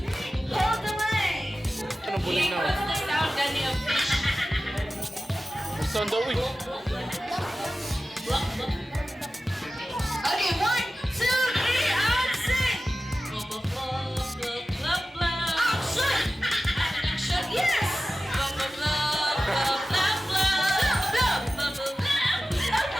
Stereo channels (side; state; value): both; normal; correlation 0.94